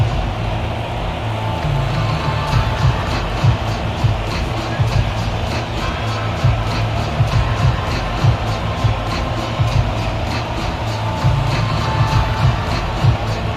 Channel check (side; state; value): both; identical; correlation 1.00